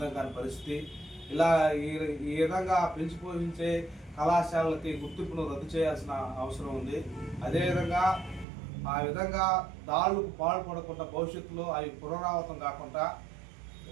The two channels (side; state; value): left; drops out; at 8.5 s